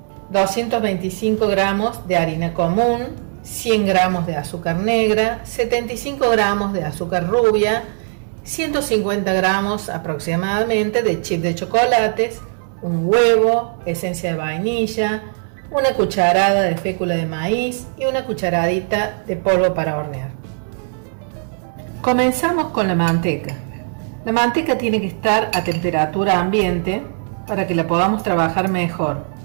225 gramos de harina común, 100 gramos de azúcar negra, 75 gramos de azúcar rubia, 150 gramos aproximadamente de chip de chocolates, un huevo, esencia de vainilla, una cucharada de fécula de maíz y una cucharadita de polvo para hornear. Comenzamos con la manteca. La manteca tiene que estar a temperatura ambiente para que la podamos trabajar mejor.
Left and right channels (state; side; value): silent; left; digital silence